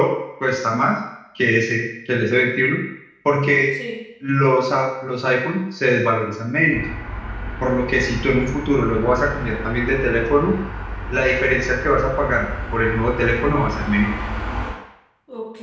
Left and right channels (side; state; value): both; identical; correlation 1.00